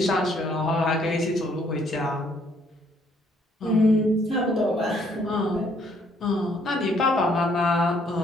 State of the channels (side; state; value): both; normal; correlation 0.66